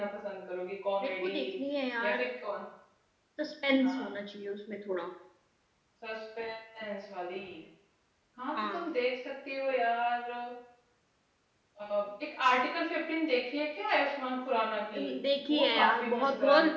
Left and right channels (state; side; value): identical; both; correlation 1.00